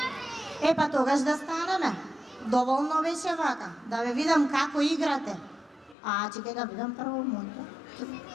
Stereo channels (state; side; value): drops out; right; at 6.0 s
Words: Па тогаш да станеме. Доволно беше вака. Да ве видам како играте. Чекај да видам прво моето.